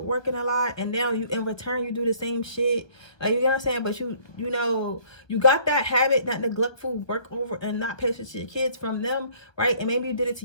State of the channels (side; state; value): right; late; 1.3 ms